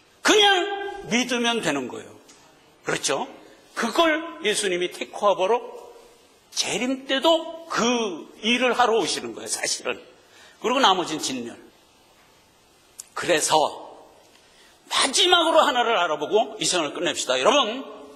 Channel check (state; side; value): identical; both; correlation 1.00